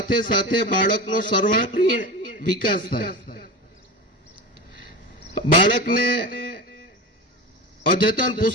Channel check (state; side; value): normal; both; correlation 0.26